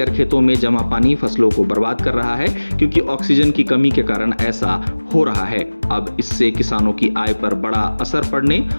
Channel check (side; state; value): both; inverted; correlation -1.00